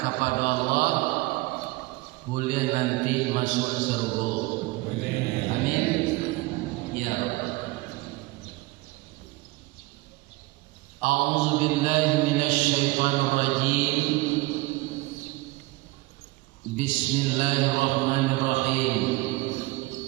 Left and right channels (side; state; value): left; quieter; 21.7 dB